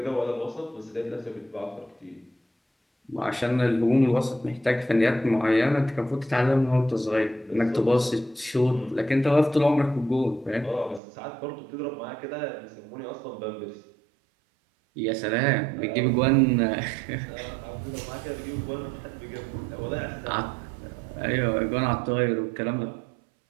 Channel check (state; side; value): drops out; left; at 11.0 s